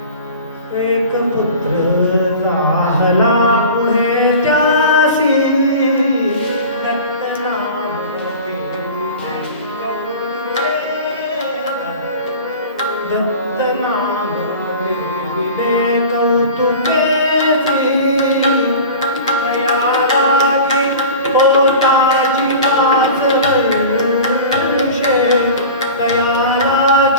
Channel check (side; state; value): both; inverted; correlation -0.37